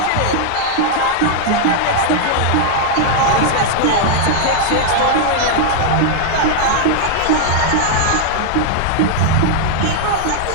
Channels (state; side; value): different; both; correlation 0.00